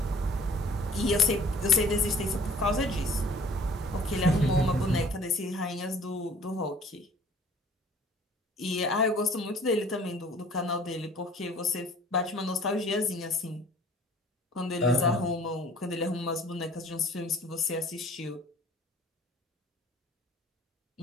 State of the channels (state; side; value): normal; both; correlation 0.52